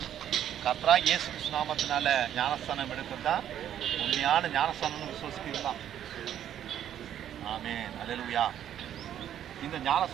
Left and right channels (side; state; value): left; quieter; 10.5 dB